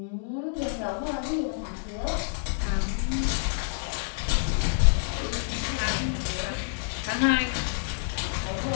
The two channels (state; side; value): silent; right; 56 dB below the other